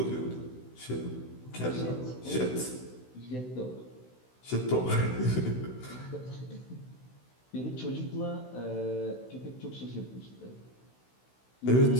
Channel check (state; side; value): late; right; 16 ms